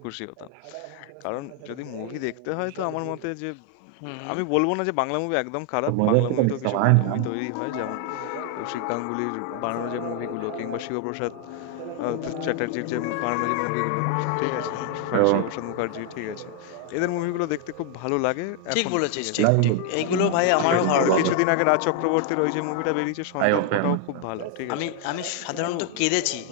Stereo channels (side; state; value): both; different; correlation 0.00